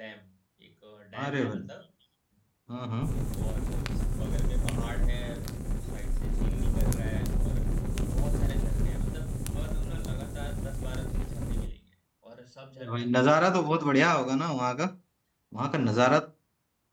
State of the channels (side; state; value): both; identical; correlation 1.00